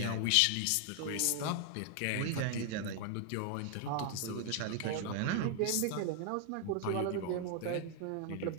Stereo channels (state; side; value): different; both; correlation 0.00